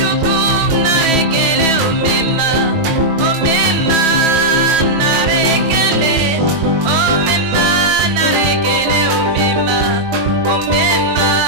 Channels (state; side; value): late; left; 21 ms